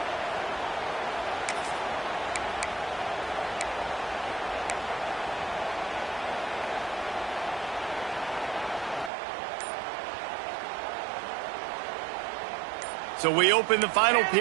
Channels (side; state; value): left; drops out; at 9.1 s